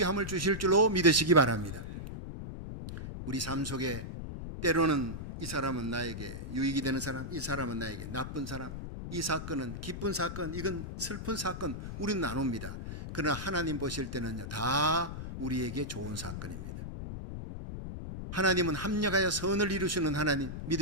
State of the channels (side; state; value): left; noise; rumble, 8 dB below the sound